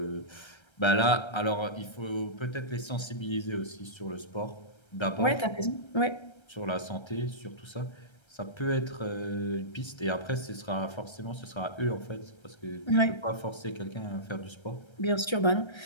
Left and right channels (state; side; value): late; right; 1.3 ms